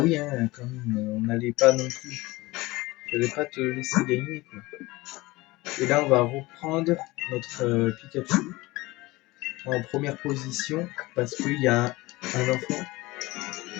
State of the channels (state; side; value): quieter; right; 20.9 dB